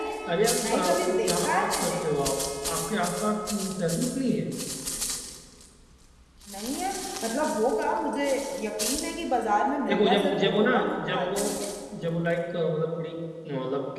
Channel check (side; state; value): both; identical; correlation 1.00